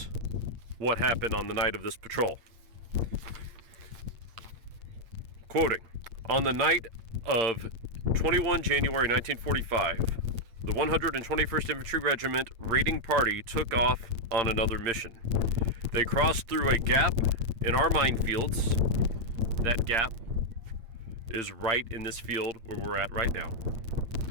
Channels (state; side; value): late; left; 8.8 ms